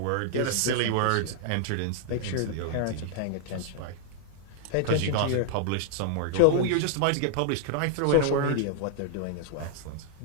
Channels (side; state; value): both; different; correlation -0.01